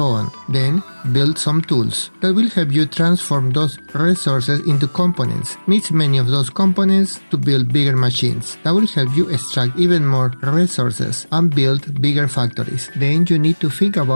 on. Then build some tools that will help you transform those resources into components. Mix many of those components to build bigger machines that will help you extract even more resources and build bigger factories. Then you need to think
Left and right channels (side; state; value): both; inverted; correlation -1.00